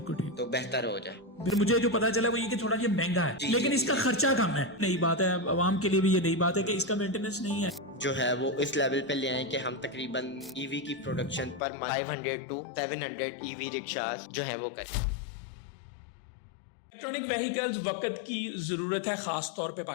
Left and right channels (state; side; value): drops out; right; at 11.6 s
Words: ठीक। तो बेहतर हो जाए। फिर मुझे जो पता चला वो ये कि थोड़ा ये महंगा है, जी, लेकिन जी, इसका जी। खर्चा कम है। नई बात है, आवाम के लिए भी ये नई बात है कि इसका मेंटेनेंस नहीं है। जो है वो इस लेवल पे ले आए कि हम तकरीबन ईवी की प्रोडक्शन पर 500 टू 700 ईवी रिक्शास जो है वो करें। इलेक्ट्रॉनिक व्हीकल्स वक्त की जरूरत है, खास तौर पे